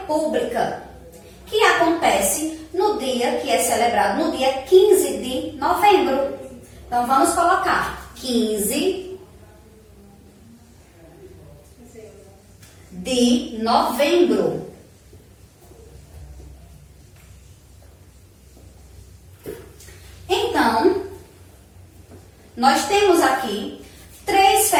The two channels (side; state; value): both; identical; correlation 1.00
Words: que acontece no dia que é celebrado, no dia 15 de novembro. Então, vamos colocar 15 de novembro. Então, nós temos aqui 3